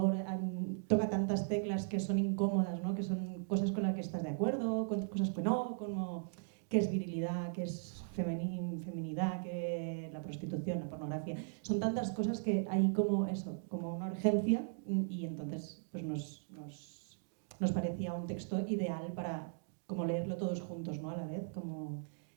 toca tantas teclas que son incómodas, ¿no? Que son cosas con las que estás de acuerdo, cosas que no, como qué es virilidad, qué es feminidad, qué es la prostitución, la pornografía. Son tantas cosas que hay como eso, como una urgencia y entonces pues nos parecía un texto ideal para como leerlo todos juntos, ¿no? A la vez, como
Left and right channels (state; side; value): silent; left; digital silence